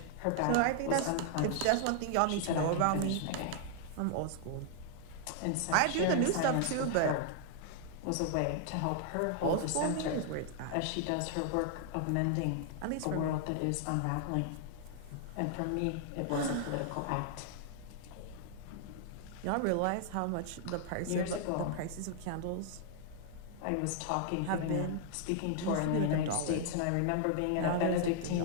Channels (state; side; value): different; both; correlation 0.00